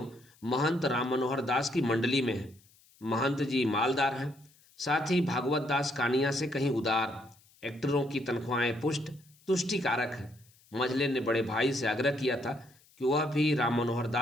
महंत राम मनोहर दास की मंडली में है। महंत जी मालदार हैं, साथ ही भागवत दास कानिया से कहीं उदार। एक्टरों की तनख्वाहें पुष्ट तुष्टिकारक है। मंझले ने बड़े भाई से आग्रह किया था कि वह भी राम मनोहर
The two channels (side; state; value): left; noise; hiss, 30 dB below the sound